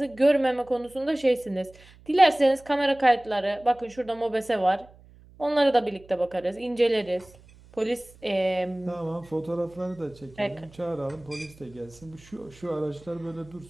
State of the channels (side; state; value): right; noise; hum, 24 dB below the sound